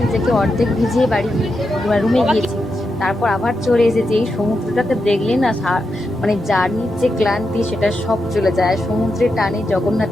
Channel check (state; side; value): normal; both; correlation 0.86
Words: নিজেকে অর্ধেক ভিজিয়ে বাড়ি রুমে গিয়েছি, তারপর আবার চলে এসেছি। এই সমুদ্রটাকে দেখলে না, মানে জার্নির যে ক্লান্তি সেটা সব চলে যায়। সমুদ্রের টানে,